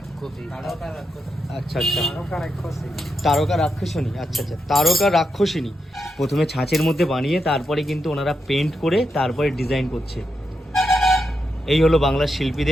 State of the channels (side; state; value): both; normal; correlation 0.85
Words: আচ্ছা আচ্ছা, তারকা রাক্ষসিনী। আচ্ছা আচ্ছা, তারকা রাক্ষসিনী। প্রথমে ছাঁচের মধ্যে বানিয়ে তারপরে কিন্তু ওনারা পেন্ট করে তারপরে ডিজাইন করছে। এই হলো বাংলার